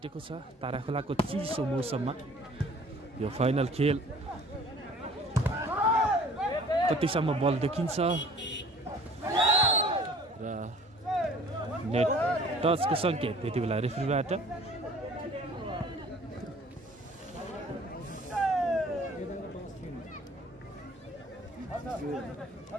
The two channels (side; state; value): both; normal; correlation 0.51